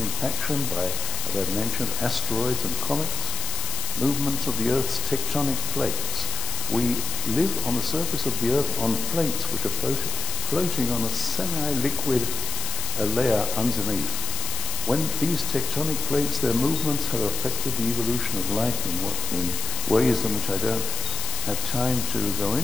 impaction by, as I mentioned, asteroids and comets, movements of the Earth's tectonic plates. We live on the surface of the Earth on plates which are floating on a semi-liquid layer underneath. When these tectonic plates, their movements have affected the evolution of life in ways in which I don't have time to go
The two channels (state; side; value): noise; left; hiss, 2 dB below the sound